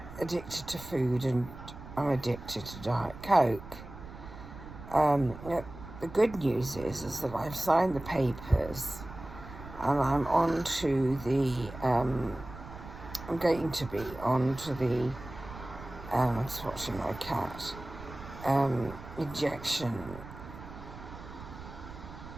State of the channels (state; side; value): noise; right; rumble, 14 dB below the sound